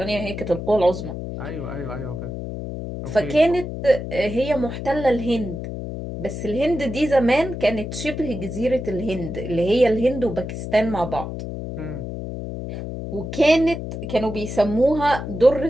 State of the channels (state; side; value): noise; left; hum, 7 dB below the sound